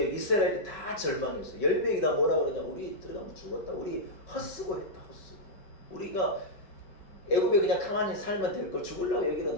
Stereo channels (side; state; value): right; late; 5.3 ms